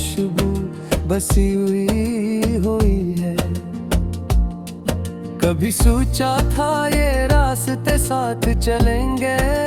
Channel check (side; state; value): both; identical; correlation 1.00